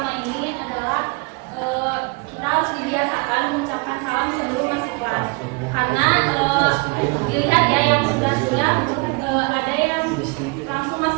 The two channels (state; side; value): quieter; left; 29.8 dB